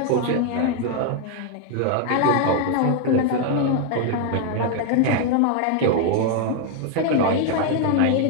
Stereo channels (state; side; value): different; both; correlation 0.01